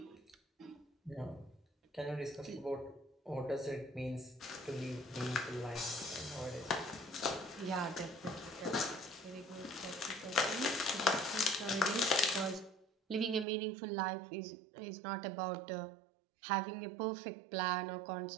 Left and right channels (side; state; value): left; drops out; at 13.5 s